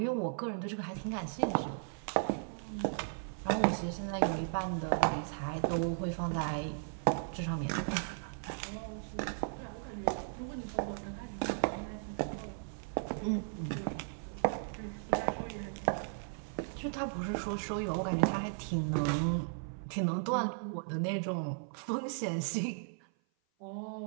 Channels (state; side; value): silent; left; 54 dB below the other